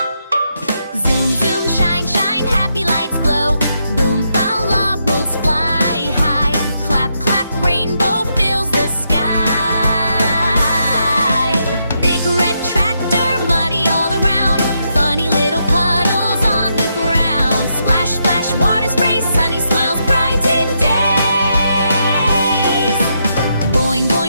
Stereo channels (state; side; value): inverted; both; correlation -0.80